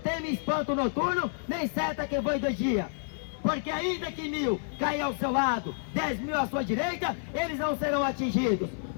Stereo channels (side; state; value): right; silent; 56 dB below the other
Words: espanto noturno, nem seta que voe de dia, porque ainda que 1000 caia ao seu lado, 10.000 à sua direita, eles não serão atingidos,